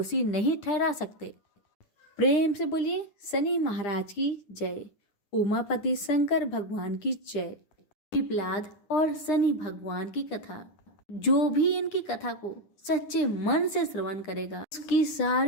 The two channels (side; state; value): right; late; 9.9 ms